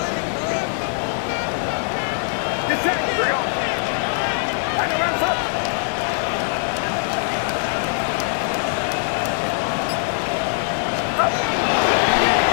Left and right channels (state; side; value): silent; right; 64 dB below the other